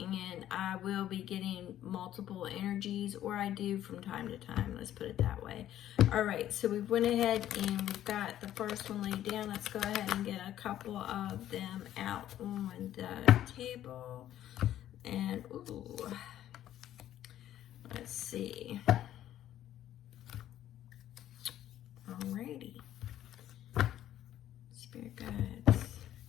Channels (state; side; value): quieter; right; 12.1 dB